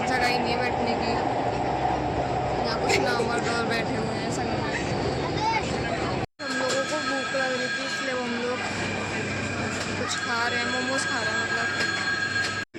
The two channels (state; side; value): identical; both; correlation 1.00